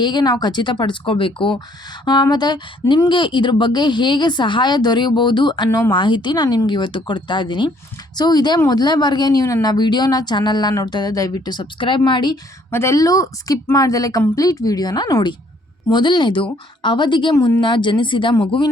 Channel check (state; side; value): normal; both; correlation 0.63